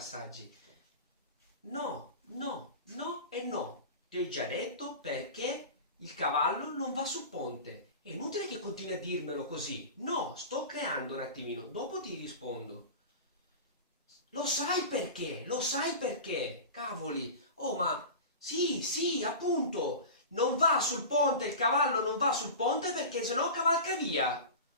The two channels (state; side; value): inverted; both; correlation -0.31